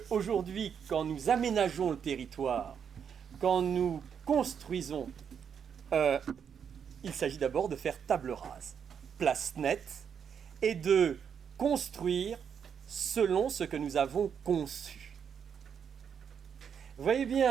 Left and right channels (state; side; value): quieter; left; 7.5 dB